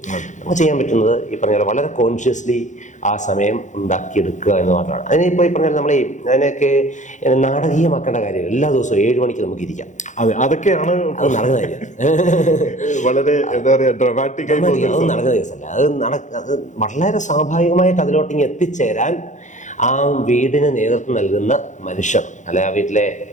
നമുക്ക് ചെയ്യാൻ പറ്റുന്നത് ഈ പറഞ്ഞ പോലെ വളരെ കോൺഷ്യസ്ലി ആ സമയം ഉണ്ടാക്കിയെടുക്കുക എന്ന് മാത്രമാണ്. അതിനിപ്പോൾ ഈ പറഞ്ഞാൽ നമ്മൾ അതിനൊക്കെ നാടകീയമാക്കേണ്ട കാര്യം. എല്ലാ ദിവസവും 7 മണിക്ക് നമുക്ക് ഇരിക്കാം. അതൊക്കെയാണ് അത് നടക്കുന്ന കാര്യം. വളരെ എന്താ പറയുക, ഡ്രമാറ്റിക് ആയി അത് നടക്കുന്ന കേസല്ല. അത് വളരെ സ്വാഭാവികമായിട്ട് അതിലോട്ടിങ്ങ് എത്തിച്ചേരാൻ ആ വീടിന് നേതൃത്വം നൽകുന്ന മനുഷ്യർ, അല്ലെ ആ വീട്ടിലെ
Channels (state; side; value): late; right; 0.35 ms